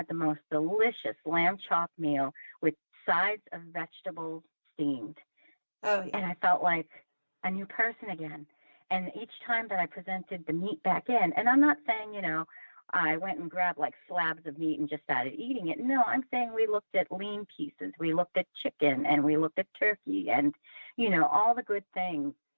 the most delicious lamb chop meal with sides of vegetables steamed. Oh, yeah. And I felt like a new person again. And each time that I presented the meat back in, and I'm not saying, you know, I went and grabbed like slabs of meat and just started eating it. No, I'm saying we looked at lean pieces. We looked at chicken and we looked at turkey and, you know, all the good things.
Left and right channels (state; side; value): inverted; both; correlation -1.00